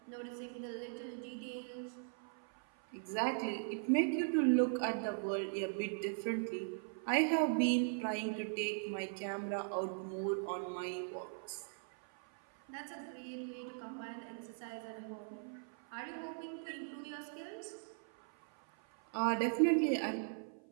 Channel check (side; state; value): left; silent; 51 dB below the other